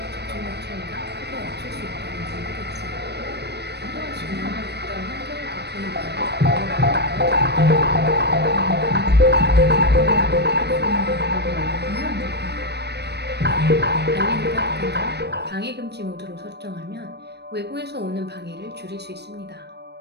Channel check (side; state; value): left; late; 0.49 ms